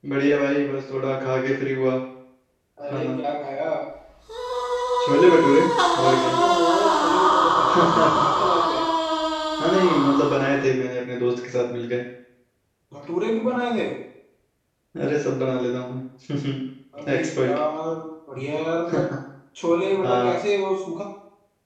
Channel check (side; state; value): both; identical; correlation 1.00